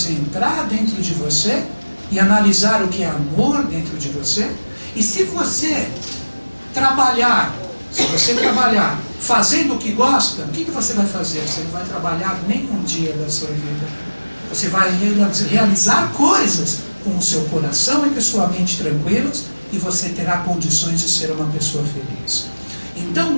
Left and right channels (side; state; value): both; inverted; correlation -1.00